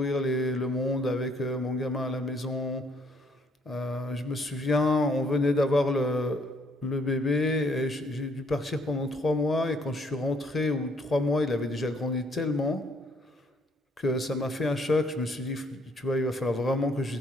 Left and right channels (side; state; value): both; normal; correlation 0.66